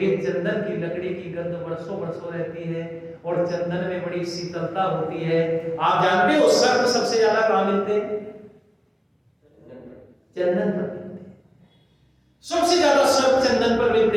चंदन की लकड़ी की गंध वर्षों वर्षों रहती है और चंदन में बड़ी शीतलता होती है। आप जानते हो सर्प सबसे ज्यादा कहां मिलते हैं? चंदन पर मिलते हैं। सबसे ज्यादा सर्प चंदन पर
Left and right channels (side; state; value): both; identical; correlation 1.00